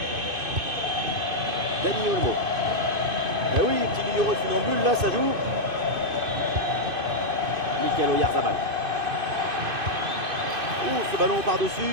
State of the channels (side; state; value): left; late; 2.5 ms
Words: Dani Olmo. Eh oui, petit numéro de funambule, là, ça joue. Mikel Oyarzabal. Ouh, ce ballon